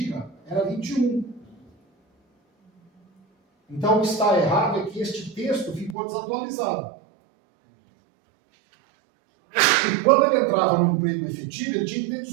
era 21. Então, o que está errado é que este texto ficou desatualizado. E quando ele entrava no emprego efetivo, ele tinha que ter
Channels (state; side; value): drops out; left; at 6.0 s